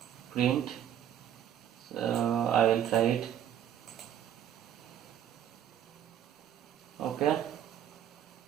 print. So I will try it. Okay.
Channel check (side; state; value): left; quieter; 10.2 dB